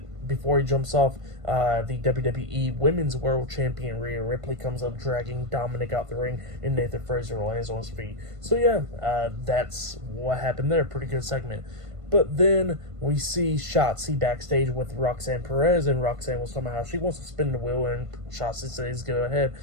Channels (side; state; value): left; late; 1.5 ms